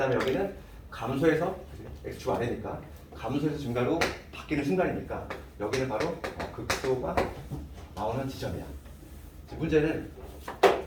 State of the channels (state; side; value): identical; both; correlation 1.00